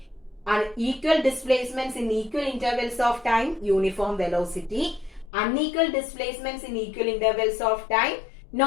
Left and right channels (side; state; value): right; drops out; at 5.3 s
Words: And equal displacements in equal intervals of time, uniform velocity. Unequal displacements in equal intervals of time,